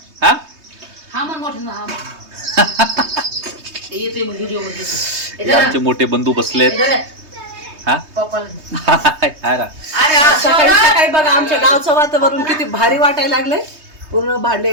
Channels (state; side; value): late; left; 3.2 ms